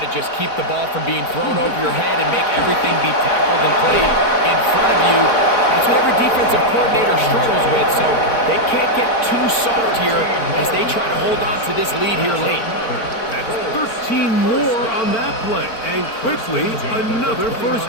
just keep the ball from being thrown over your head and make everything be tackled and played in front of you? That's what every defensive coordinator struggles with, so they can't get too soft here as they try to hold on to this lead here late. That's 13 more on that play, and quickly another first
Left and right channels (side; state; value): right; late; 4.4 ms